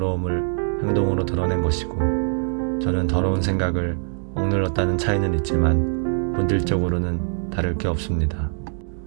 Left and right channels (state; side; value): silent; left; digital silence